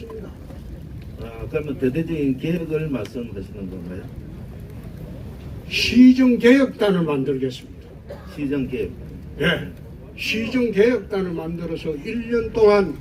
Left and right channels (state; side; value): identical; both; correlation 1.00